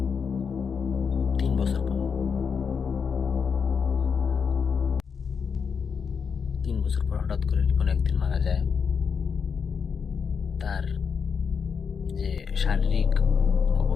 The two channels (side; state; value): right; quieter; 6.2 dB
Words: 3 বছর পর। 3 বছর পর হঠাৎ করে রিপন একদিন মারা যায়। তার যে শারীরিক